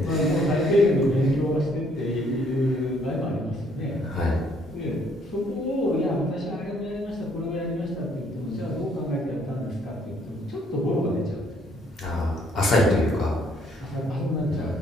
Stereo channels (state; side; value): normal; both; correlation 0.65